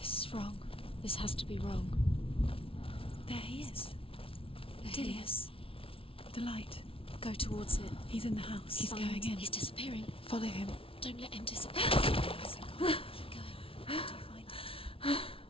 is wrong. This has to be wrong. There he is. There he is. The light. Go towards it. He's in the house. He's Find- going in. He's disappearing. Follow him. Don't let him disappear. Keep going. How do you find it?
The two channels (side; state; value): right; late; 0.26 ms